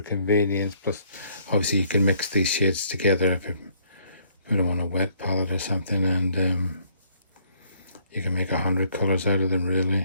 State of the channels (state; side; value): inverted; both; correlation -0.64